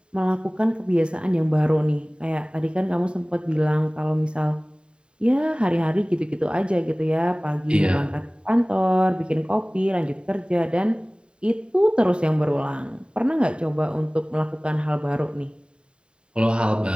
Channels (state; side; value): late; left; 0.052 ms